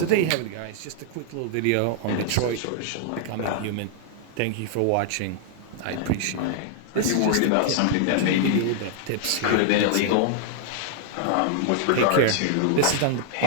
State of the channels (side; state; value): both; different; correlation 0.00